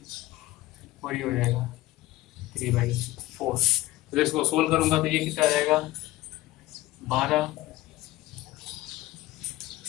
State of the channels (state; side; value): quieter; right; 17.0 dB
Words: और ये हो जाएगा 3/4। तो इसको सोल्व करूंगा तो ये कितना आ जाएगा 12